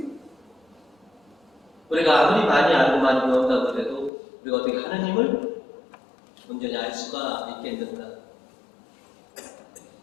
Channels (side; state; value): right; drops out; at 4.1 s